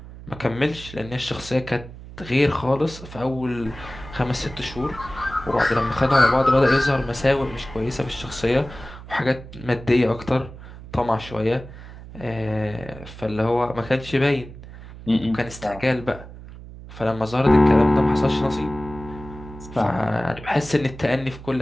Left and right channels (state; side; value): noise; right; hum, 15 dB below the sound